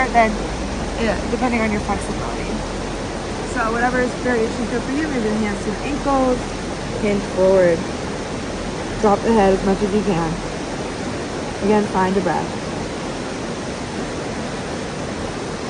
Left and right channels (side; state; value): both; identical; correlation 1.00